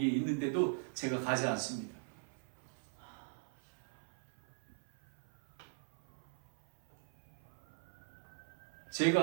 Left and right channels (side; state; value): left; silent; 51 dB below the other